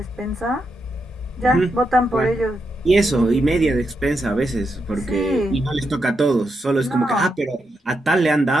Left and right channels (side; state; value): both; normal; correlation 0.84